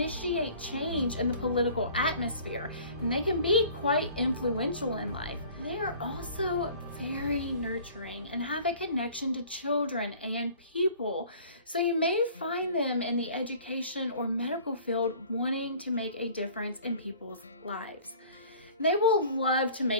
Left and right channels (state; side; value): inverted; both; correlation -0.49